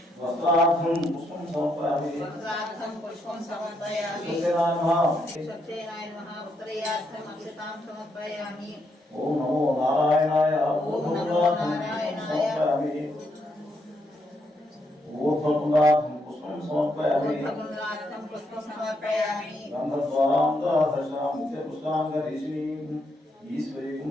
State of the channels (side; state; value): both; normal; correlation 0.77